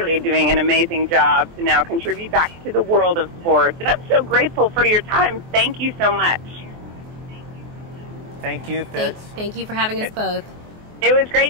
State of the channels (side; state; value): left; late; 23 ms